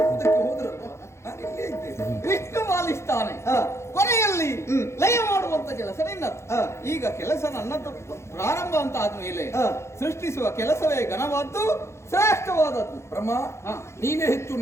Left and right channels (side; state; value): right; late; 0.13 ms